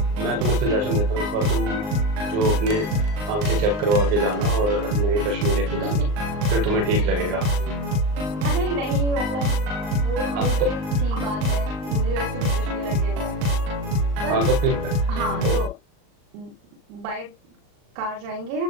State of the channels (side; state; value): left; late; 39 ms